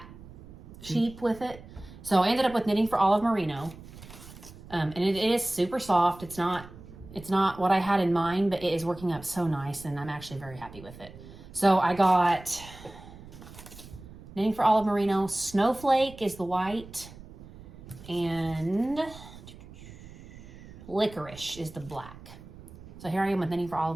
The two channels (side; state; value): right; noise; rumble, 17 dB below the sound